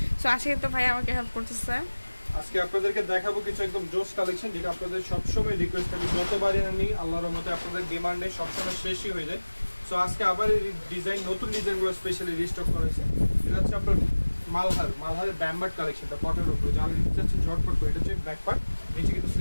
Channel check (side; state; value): both; inverted; correlation -1.00